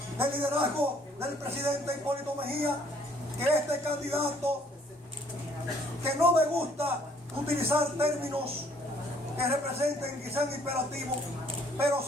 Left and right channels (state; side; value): normal; both; correlation 0.62